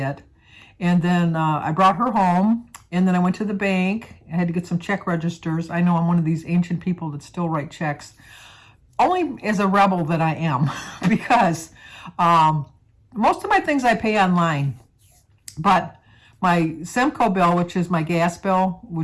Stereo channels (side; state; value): both; identical; correlation 1.00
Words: And then I brought her home, and then I went to the bank. I had to get some check registers. I know I'm one of these ancient people that still write checks. Only as a rebel that I am because most of my things I pay online. But my Semco bill, which is my gas bill,